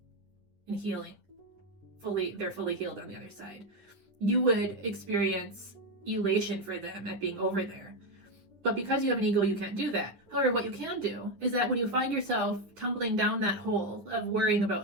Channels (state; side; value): late; left; 9.9 ms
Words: and healing. They're fully healed on the other side. You would experience elation for them at being over there. But because you have an ego, you can't do that. However, what you can do is that when you find yourself tumbling down that hole of worrying